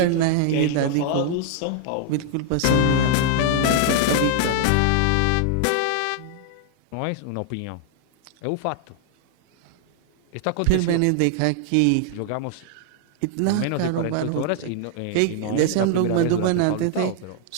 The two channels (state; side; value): different; both; correlation -0.01